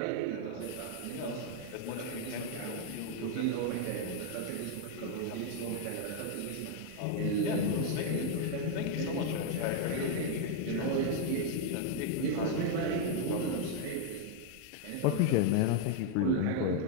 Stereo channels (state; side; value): different; both; correlation 0.00